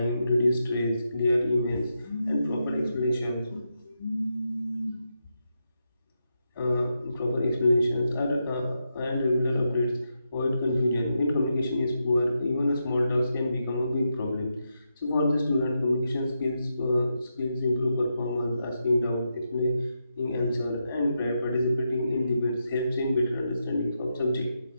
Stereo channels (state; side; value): inverted; both; correlation -0.85